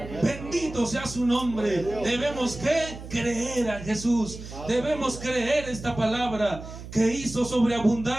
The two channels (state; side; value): noise; right; hum, 12 dB below the sound